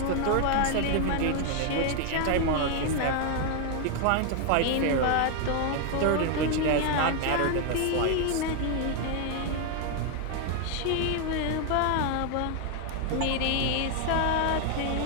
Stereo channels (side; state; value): both; different; correlation 0.00